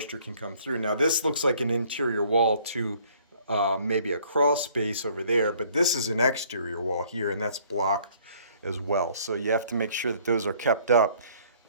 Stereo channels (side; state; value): both; inverted; correlation -0.59